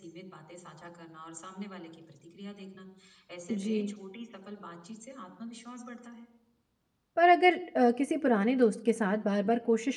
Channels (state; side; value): identical; both; correlation 1.00